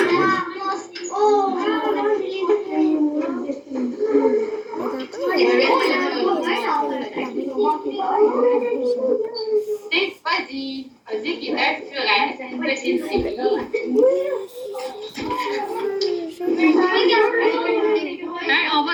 C'est Fuzzy. Fuzzy qui est un furet, c'est une petite fille. On va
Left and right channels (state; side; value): identical; both; correlation 1.00